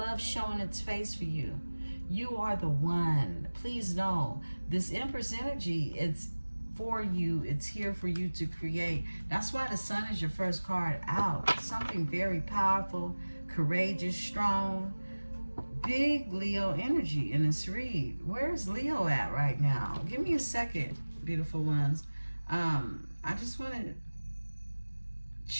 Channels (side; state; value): both; inverted; correlation -1.00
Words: showing its face for you. You are the one. Please know this Empress energy, it's for you. It's here for you to create. That's why the Sun is your first card out. Something very powerful, courageous, strong, big Leo energy in this read. Where's Leo at right now? Give me a second, beautiful ones. I just want to